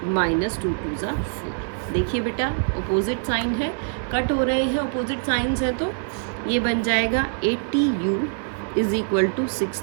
माइनस 2 2 ज़ा 4। देखिए बेटा अपोजिट साइन है, कट हो रहे हैं, अपोजिट साइंस हैं, तो ये बन जाएगा 80u is equal to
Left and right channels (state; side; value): silent; left; digital silence